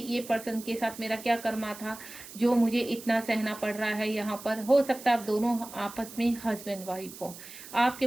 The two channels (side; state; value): right; noise; hiss, 15 dB below the sound